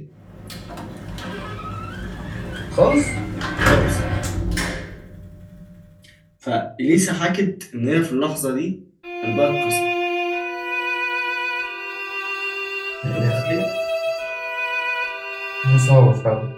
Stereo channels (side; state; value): both; identical; correlation 1.00